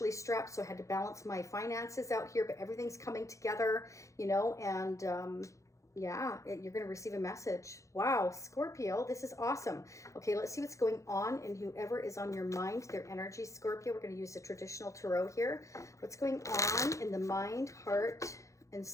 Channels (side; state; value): right; late; 0.15 ms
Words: strapped, so I had to balance my finances out here, but everything's coming together, you know, and yeah, you're going to receive a message. Wow, Scorpio, this is awesome. Okay, let's see what's going on in whoever is on your mind, their energy, Scorpio. We're going to use the traditional tarot here. What's going on in the mind, heart, and